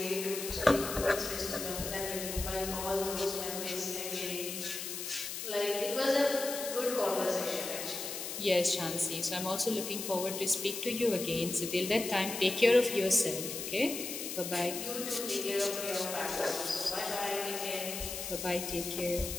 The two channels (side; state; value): left; noise; hiss, 6 dB below the sound